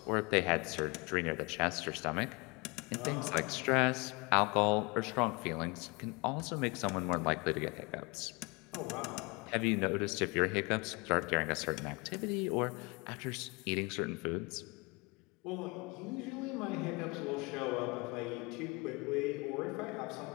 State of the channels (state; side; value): quieter; right; 28.1 dB